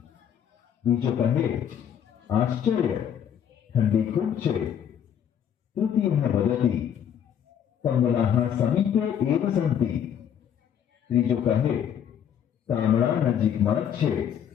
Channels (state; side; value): quieter; right; 8.9 dB